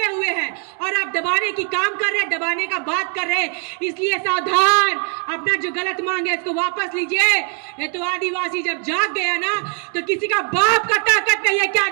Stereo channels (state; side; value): quieter; left; 38.9 dB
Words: हुए हैं और आप दबाने की काम कर रहे हैं, दबाने का बात कर रहे हैं। इसलिए सावधान, अपना जो गलत मांग है इसको वापस लीजिए। ये तो आदिवासी जब जाग गया ना तो किसी का बाप का ताकत नहीं है कि